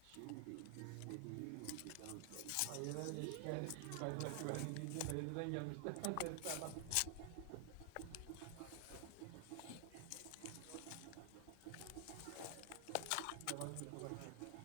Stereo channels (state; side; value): different; both; correlation 0.00